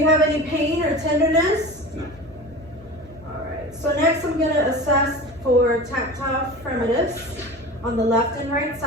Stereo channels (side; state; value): both; normal; correlation 0.34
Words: have any pain or tenderness? No. All right. So next I'm going to assess for tactile fremitus on the left and right